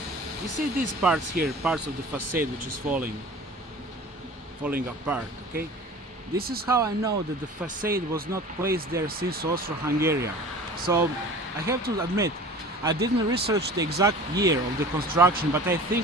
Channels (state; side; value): normal; both; correlation 0.41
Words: you see these parts here, parts of the facade which is falling apart, okay? This is how I know that the facade was not placed there since Austro-Hungary. So I have to admit, I didn't research the exact year of the construction, but I